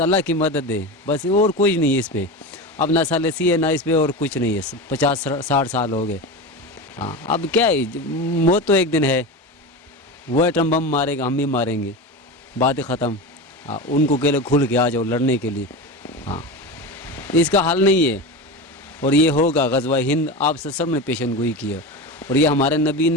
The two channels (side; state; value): both; normal; correlation 0.24